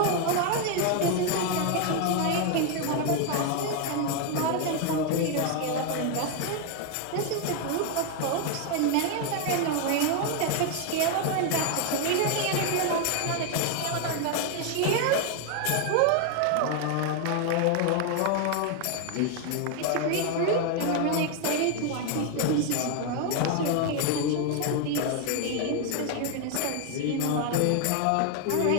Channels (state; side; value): different; both; correlation 0.01